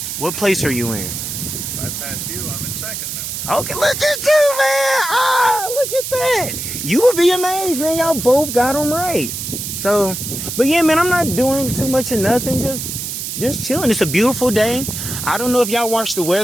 What place are you in? If I pass you, I'm in second now. Okay, look at you, man. Look at that. You would be amazed, man. Y'all both got them right. So, but yeah, man, I'm not doing too much of nothing. Just chilling. It's a beautiful day. I don't know if y'all watch the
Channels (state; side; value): noise; right; hiss, 5 dB below the sound